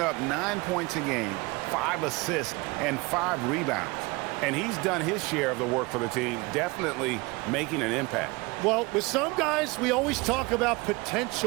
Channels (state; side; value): quieter; left; 24.7 dB